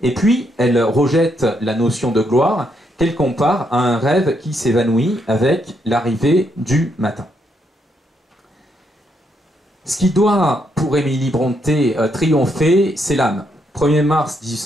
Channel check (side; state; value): both; normal; correlation 0.76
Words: et puis elle rejette la notion de gloire qu'elle compare à un rêve qui s'évanouit avec l'arrivée du matin. Ce qui doit, pour Émilie Brontë, triompher, c'est l'âme. 1er mars